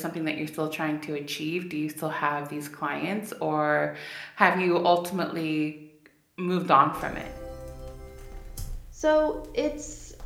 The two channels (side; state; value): both; identical; correlation 1.00